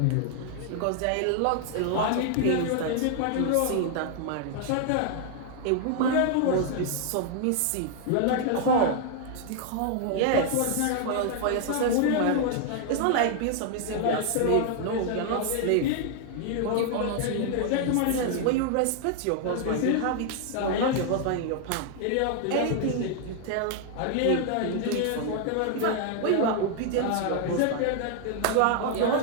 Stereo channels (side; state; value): both; different; correlation 0.00